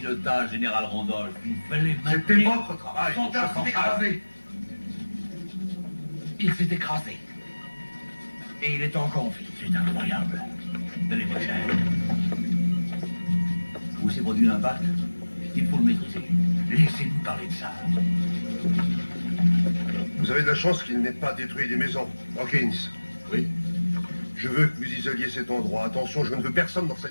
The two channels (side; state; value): both; inverted; correlation -1.00